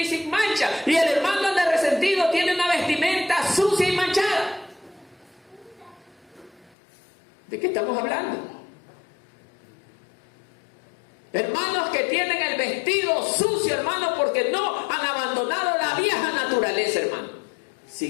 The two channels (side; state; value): right; drops out; at 6.8 s